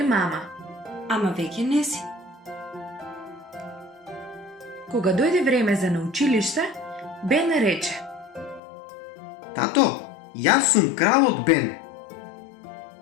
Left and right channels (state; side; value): drops out; right; at 8.6 s